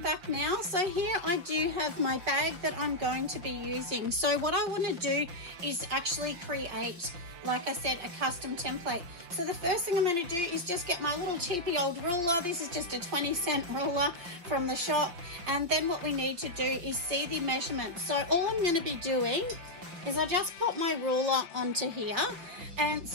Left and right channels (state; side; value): late; left; 5.8 ms